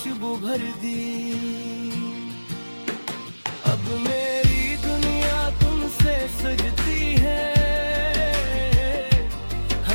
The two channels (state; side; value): inverted; both; correlation -1.00